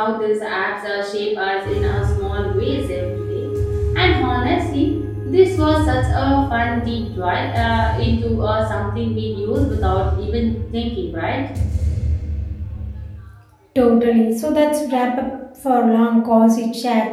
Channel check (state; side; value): identical; both; correlation 1.00